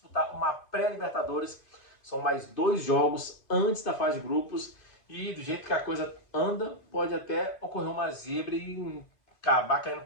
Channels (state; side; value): late; right; 2.5 ms